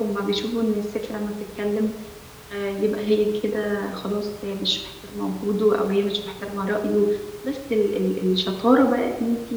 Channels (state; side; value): identical; both; correlation 1.00